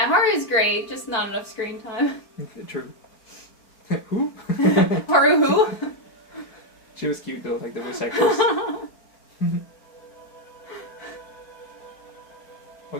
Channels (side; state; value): right; late; 4.5 ms